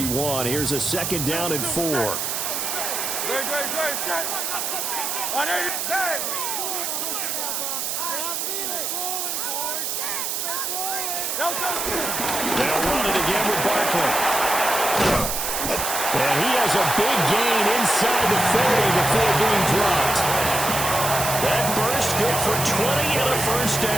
here's a 2nd down and 4. They'll run it again with Barkley. And he has a big gain inside the 40 before being dropped. That burst good for 20 and a 1st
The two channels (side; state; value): right; noise; hiss, 2 dB below the sound